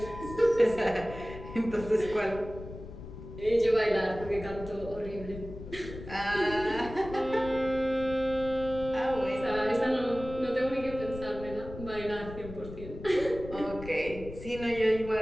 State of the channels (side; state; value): left; noise; rumble, 12 dB below the sound